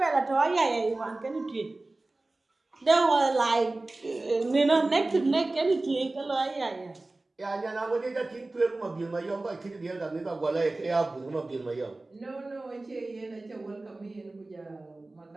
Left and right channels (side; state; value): left; quieter; 3.0 dB